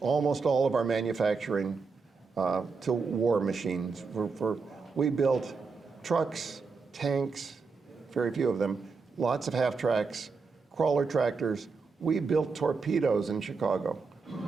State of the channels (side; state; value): left; quieter; 4.7 dB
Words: almost all of our manufacturing to war machines. We built trucks, tanks, very few of them, lots of half-tracks, crawler tractors. We built torpedoes in Chicago.